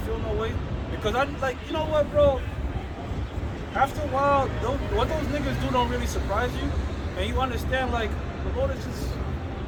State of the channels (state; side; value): identical; both; correlation 1.00